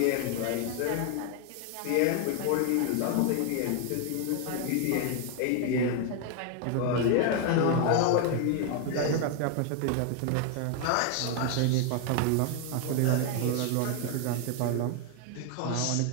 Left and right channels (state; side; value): different; both; correlation 0.01